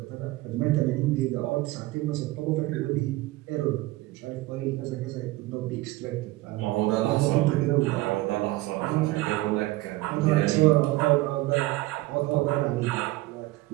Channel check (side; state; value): left; quieter; 18.9 dB